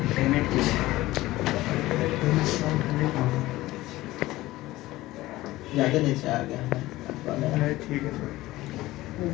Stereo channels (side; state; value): right; quieter; 17.5 dB